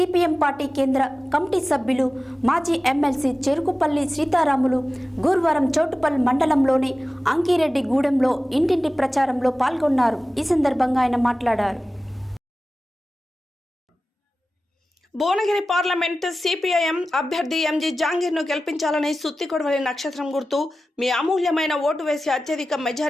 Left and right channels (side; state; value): both; normal; correlation 0.95